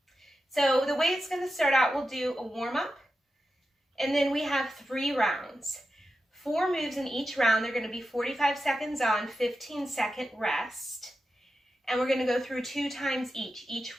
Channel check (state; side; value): normal; both; correlation 0.90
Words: So the way it's going to start out, we'll do a warm-up, and then we have 3 rounds. 4 moves in each round. They're going to be 45 seconds on, 15-second rest, and we're going to go through 2 times each